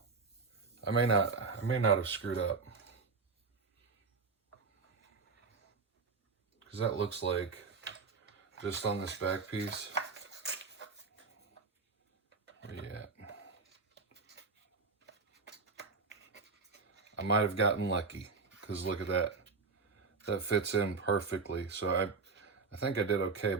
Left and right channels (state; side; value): quieter; left; 4.5 dB